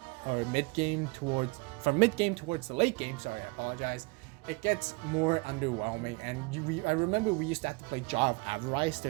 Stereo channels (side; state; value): left; quieter; 26.8 dB